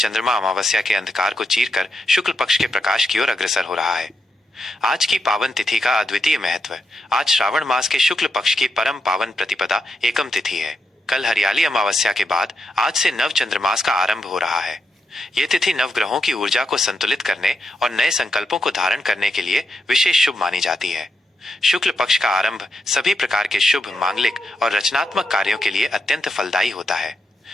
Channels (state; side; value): normal; both; correlation 0.83